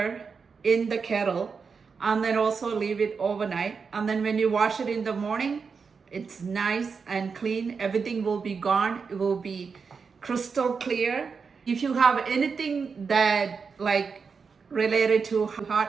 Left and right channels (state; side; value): quieter; left; 5.4 dB